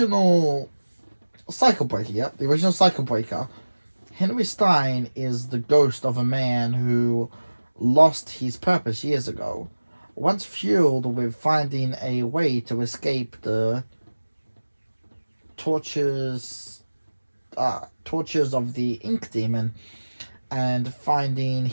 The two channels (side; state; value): both; inverted; correlation -1.00